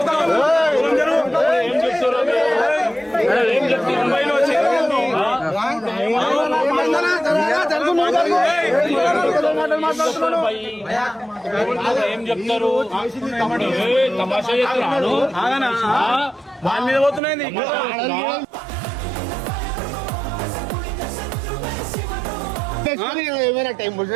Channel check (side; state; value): left; drops out; at 17.2 s